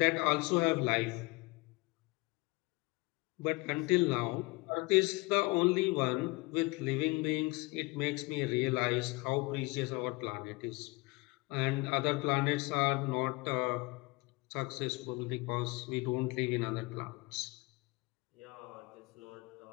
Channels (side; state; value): right; quieter; 24.5 dB